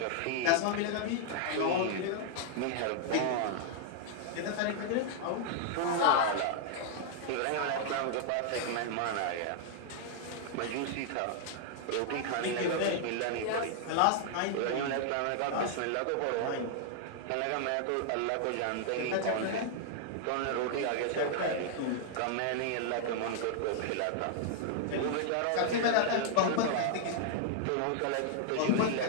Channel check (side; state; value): both; different; correlation -0.01